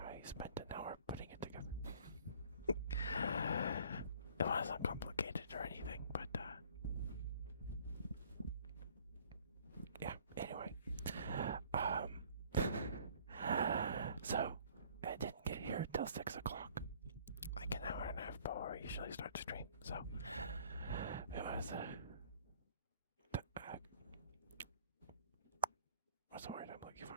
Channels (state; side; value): inverted; both; correlation -0.55